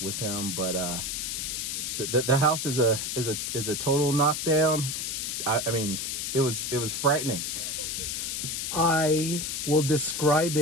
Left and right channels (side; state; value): left; noise; hiss, 2 dB below the sound